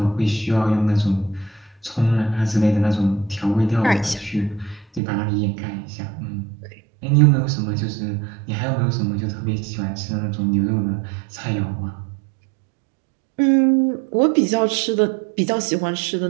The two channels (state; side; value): drops out; left; at 5.0 s